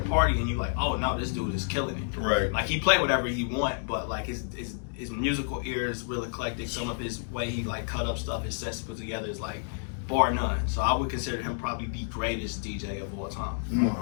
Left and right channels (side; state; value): right; silent; digital silence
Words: and you like, oh no, this dude is killing it. Right. Like he play whatever he want, but like his musical ear is real eclectic. Some of his way he like cut up stuff, his sets put together is like bar none. So I would consider him probably the greatest DJ of all time. I